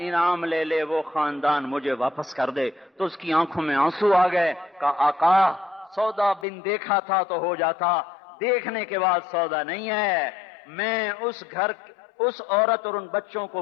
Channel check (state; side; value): drops out; right; at 6.5 s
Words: انعام لے لے، وہ خاندان مجھے واپس کر دے۔ تو اس کی آنکھوں میں آنسو آ گئے۔ کہا آقا سودا بن دیکھا تھا تو ہو جاتا، دیکھنے کے بعد سودا نہیں ہے۔ میں اس عورت اور ان بچوں کو